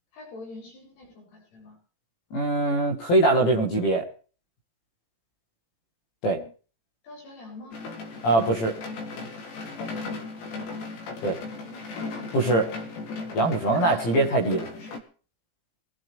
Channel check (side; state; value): right; late; 18 ms